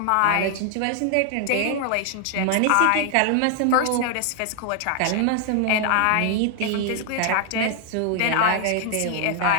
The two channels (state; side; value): different; both; correlation 0.00